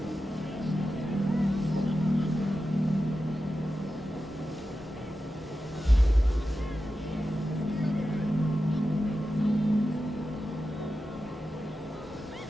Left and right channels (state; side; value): normal; both; correlation 0.91